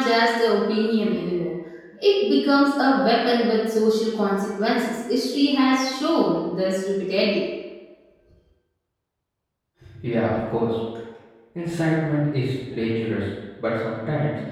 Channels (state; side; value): identical; both; correlation 1.00